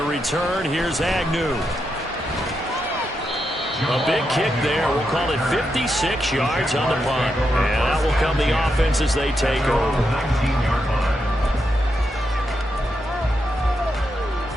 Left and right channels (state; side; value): normal; both; correlation 0.84